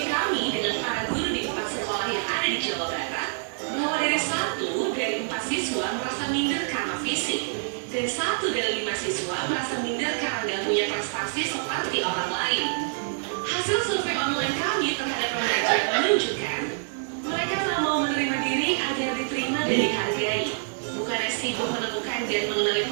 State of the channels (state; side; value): silent; left; digital silence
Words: kami dengan para guru di 4 sekolah yang ada di Jawa Barat, bahwa dari 1 dari 4 siswa merasa minder karena fisik, dan 1 dari 5 siswa merasa minder karena tidak punya prestasi seperti orang lain. Hasil survei online kami terhadap remaja menunjukkan mereka tak mau menerima diri agar diterima dan dihargai. Bukannya sibuk menemukan dan mengenali